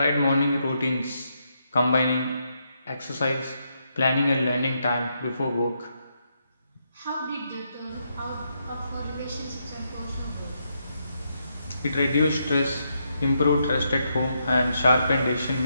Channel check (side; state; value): both; inverted; correlation -0.80